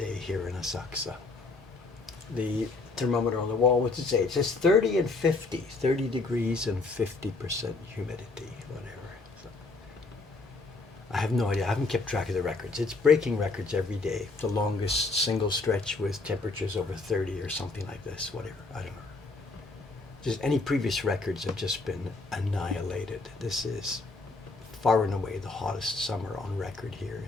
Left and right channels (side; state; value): right; quieter; 3.6 dB